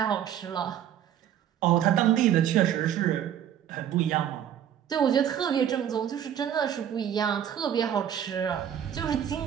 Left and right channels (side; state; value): left; quieter; 9.8 dB